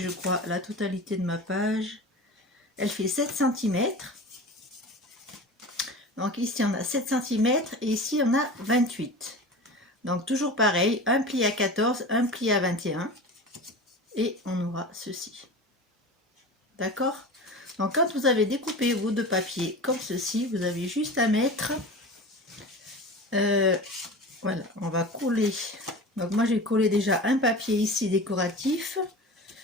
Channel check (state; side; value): normal; both; correlation 0.33